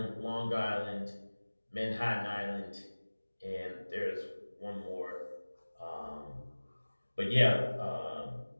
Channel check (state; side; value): inverted; both; correlation -1.00